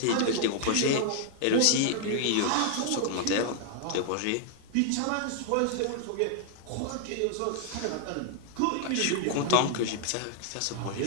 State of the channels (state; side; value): different; both; correlation 0.00